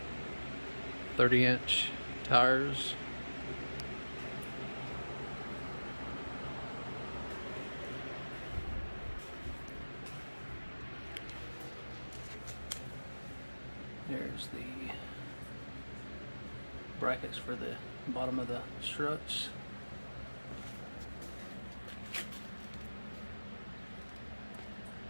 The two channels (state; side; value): inverted; both; correlation -1.00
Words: 30-inch tires. There's the brackets for the bottom of the struts.